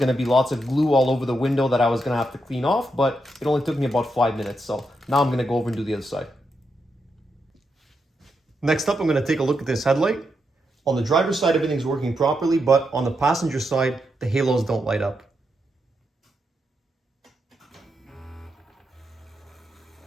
to be lots of glue all over the window that I was going to have to clean off, but it only took me about 5 minutes. So now I'm going to go over and do the other side. Next up, I'm going to take a look at this headlight. On the driver's side, everything's working properly, but on the passenger side, the halos don't light up.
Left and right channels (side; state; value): both; normal; correlation 0.83